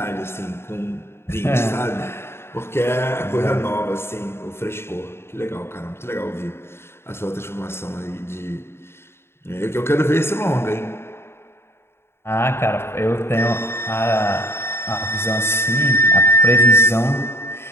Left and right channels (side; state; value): right; late; 0.12 ms